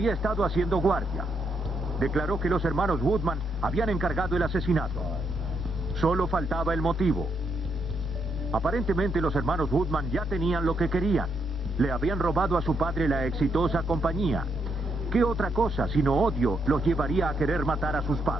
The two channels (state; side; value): normal; both; correlation 0.78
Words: estado haciendo guardia. Declaró que los hermanos Woodman habían encargado el asesinato. Solo faltaba el motivo. Aparentemente los hermanos Woodman ya tenían lo que querían. Le habían robado a su padre la exitosa compañía. ¿Qué otra cosa, sino odio, los llevaría a querer matar a sus